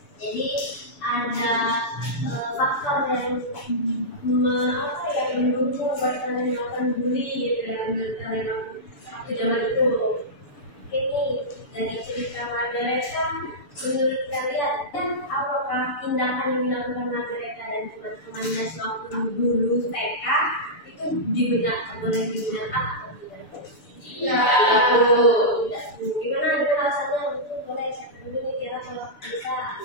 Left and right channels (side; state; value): right; late; 6.9 ms